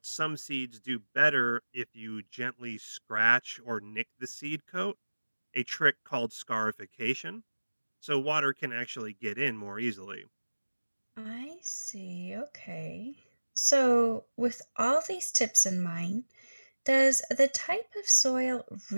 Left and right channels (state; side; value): inverted; both; correlation -1.00